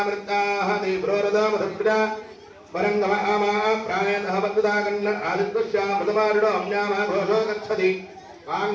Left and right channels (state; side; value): identical; both; correlation 1.00